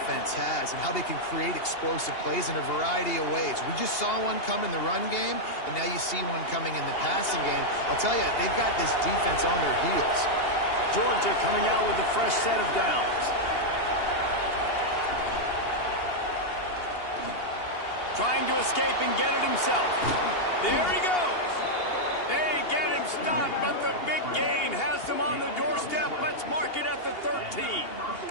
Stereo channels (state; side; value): late; right; 2.8 ms